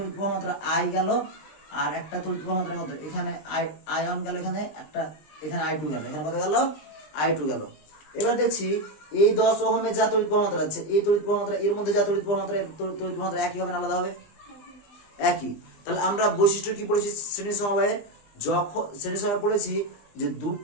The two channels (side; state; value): right; late; 20 ms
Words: প্রবাহ মাত্রা আই গেল, আর একটা তড়িৎ প্রবাহ মাত্রা কত? এখানে আই1 গেল, এখানে একটা, এখানে I2 গেল, এখানে কত গেল? I2 গেল। এবার দেখছি এই 10 ওহমের যা তড়িৎ প্রবাহ মাত্রা আছে, এই তড়িৎ প্রবাহ মাত্রা এর মধ্যে যা তড়িৎ প্রবাহ মাত্রা, তড়িৎ প্রবাহ মাত্রা একই হবে না আলাদা হবে? একই। তাহলে আমরা বৈশিষ্ট্য কি পড়েছি শ্রেণী সমবায়ে? যখন শ্রেণী সমবায় পড়েছি যে